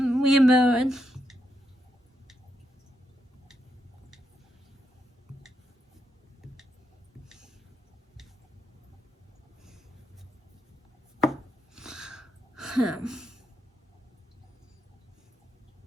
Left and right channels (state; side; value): normal; both; correlation 0.81